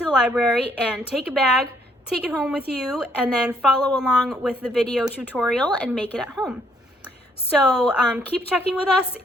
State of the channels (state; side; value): normal; both; correlation 0.69